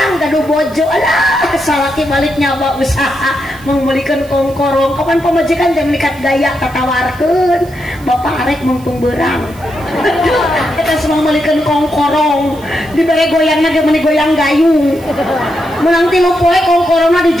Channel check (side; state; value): right; noise; hiss, 24 dB below the sound